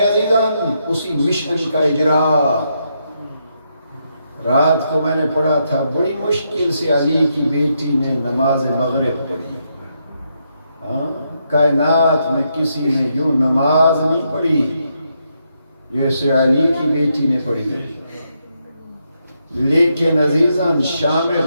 عزیزان؟ اسی مشن کا اجرا. رات کو میں نے پڑھا تھا بڑی مشکل سے علی کی بیٹی نے نماز مغرب پڑھی. کائنات میں کسی نے یوں نماز نہیں پڑھی جیسے علی کی بیٹی نے پڑھی. لیکن عزیزان شام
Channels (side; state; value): both; inverted; correlation -0.80